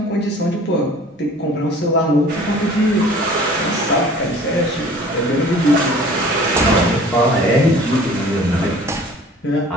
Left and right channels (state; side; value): normal; both; correlation 0.48